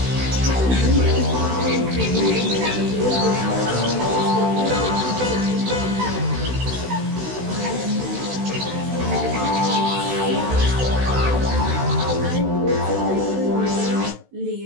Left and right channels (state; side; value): late; left; 16 ms